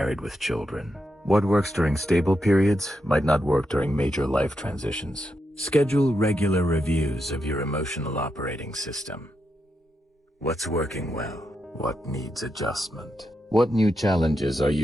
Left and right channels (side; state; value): both; normal; correlation 0.84